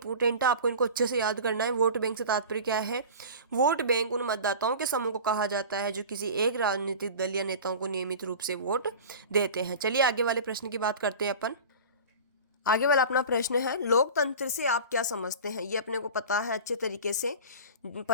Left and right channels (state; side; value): inverted; both; correlation -0.36